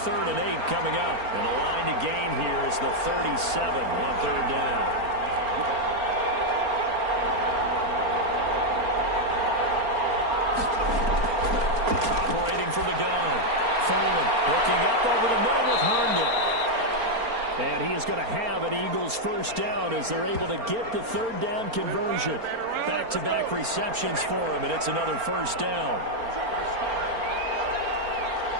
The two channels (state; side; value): late; left; 4.4 ms